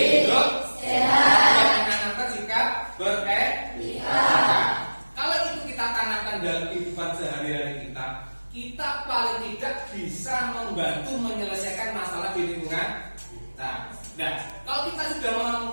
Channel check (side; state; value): both; inverted; correlation -1.00